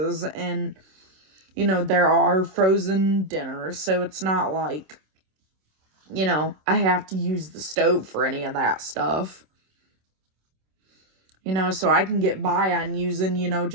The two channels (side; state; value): left; late; 26 ms